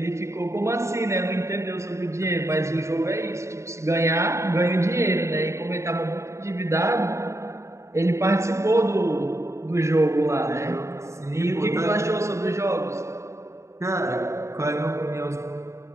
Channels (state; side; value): late; left; 0.14 ms